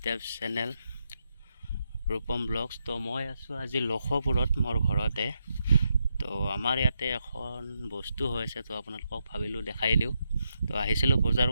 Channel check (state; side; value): inverted; both; correlation -0.82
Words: channel Rupam Vlogs. তো মই আছোঁ আজি লখপুৰত মোৰ ঘৰতে। তো আমাৰ ইয়াতে এখন বস্তু হৈছে, তো আপোনালোকক ভাবিলোঁ দেখাই দিওঁ। তো আহিছিলোঁ বজাৰ